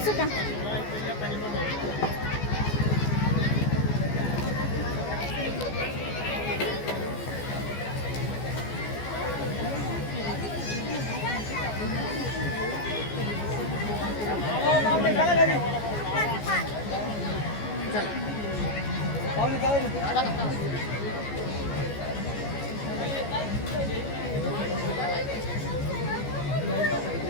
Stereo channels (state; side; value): late; right; 14 ms